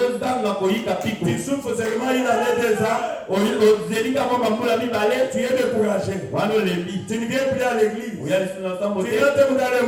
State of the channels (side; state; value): both; identical; correlation 1.00